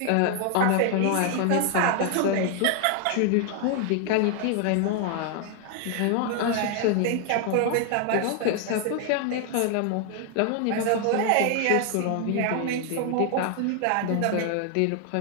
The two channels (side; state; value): both; different; correlation 0.00